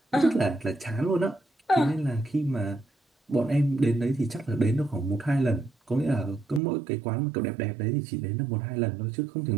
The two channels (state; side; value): drops out; left; at 6.6 s